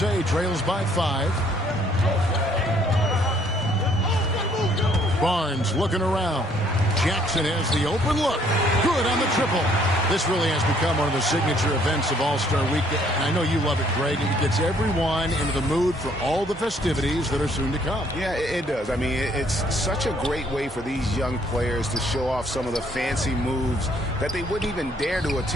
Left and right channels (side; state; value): both; normal; correlation 0.64